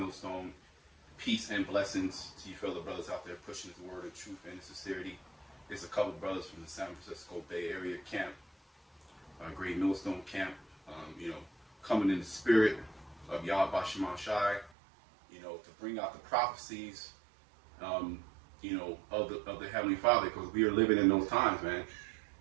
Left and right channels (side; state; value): left; drops out; at 14.7 s